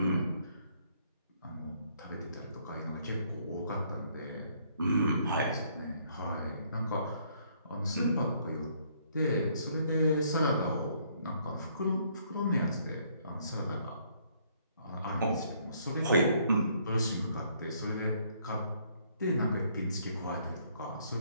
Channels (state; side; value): inverted; both; correlation -0.67